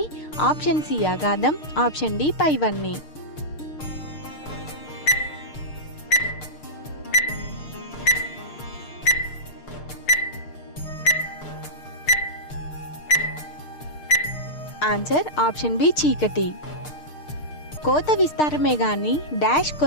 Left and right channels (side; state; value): right; late; 6.6 ms